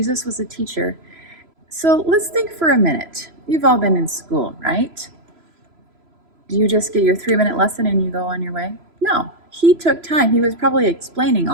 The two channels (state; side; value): late; left; 3.0 ms